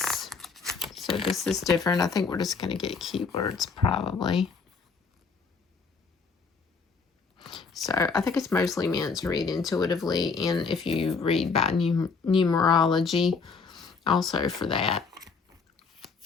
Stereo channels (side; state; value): right; quieter; 5.0 dB